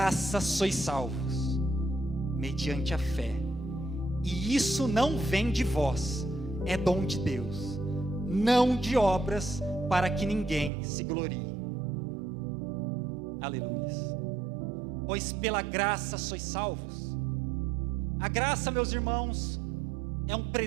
sois salvos, mediante a fé, e isso não vem de vós, é dom de Deus, não de obras, para que ninguém se glorie. Aleluia. Pois pela graça sois salvos. A graça, meus irmãos, é um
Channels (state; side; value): drops out; left; at 10.7 s